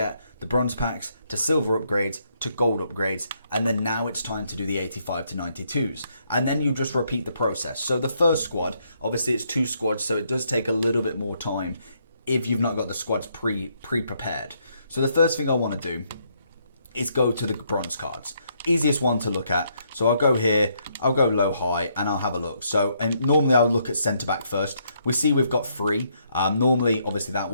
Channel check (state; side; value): inverted; both; correlation -0.73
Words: the bronze packs to silver upgrades to gold upgrades, and then now it's time to do the 85 to 92s, and then you just repeat the process. So the first squad, obviously it's 2 squads, so it does take a little bit more time if you've not got the squads pre-prepared. So the first thing I want to do is go to the bronze cards. Easiest one to look at. So I'll go here, I'll go low high, and I'll have a look. So normally I'll look at centre back first. We see we've got 3. Normally, obviously that